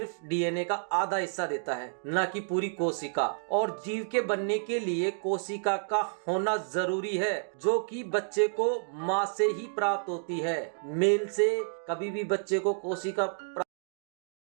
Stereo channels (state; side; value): silent; left; digital silence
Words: डीएनए का आधा हिस्सा देता है, न कि पूरी कोशिका। और जीव के बनने के लिए कोशिका का होना जरूरी है, जो कि बच्चे को माँ से ही प्राप्त होती है। मेल से कभी भी बच्चे को कोशिका